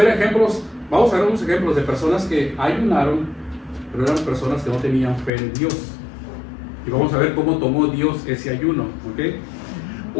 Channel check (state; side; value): drops out; right; at 5.3 s